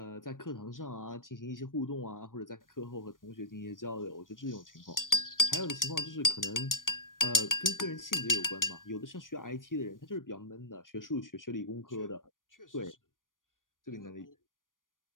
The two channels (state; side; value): late; right; 0.89 ms